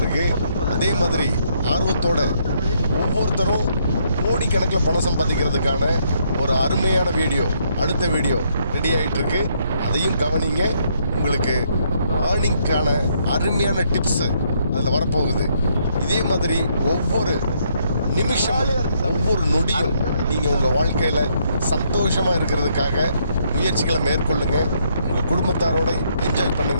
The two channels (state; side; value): inverted; both; correlation -0.72